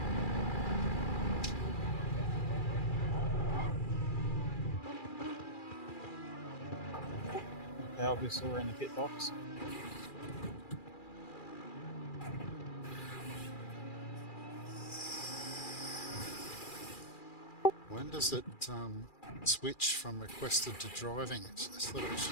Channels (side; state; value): right; late; 2.4 ms